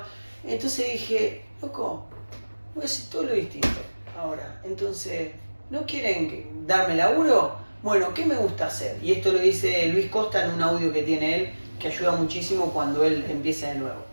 Entonces dije, loco, voy a hacer todo lo distinto ahora. Entonces, ¿no quieren darme laburo? Bueno, ¿qué me gusta hacer? Y esto lo dice Luis Costa en un audio que tiene él, que ayuda muchísimo cuando él empieza de nuevo.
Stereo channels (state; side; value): inverted; both; correlation -1.00